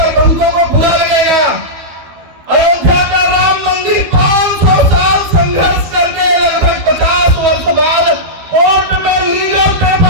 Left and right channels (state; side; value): late; left; 12 ms